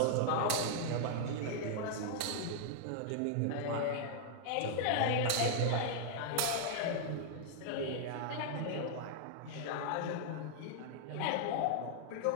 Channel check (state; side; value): different; both; correlation -0.01